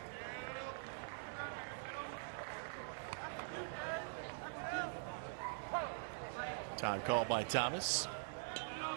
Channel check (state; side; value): silent; left; digital silence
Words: Time called by Thomas.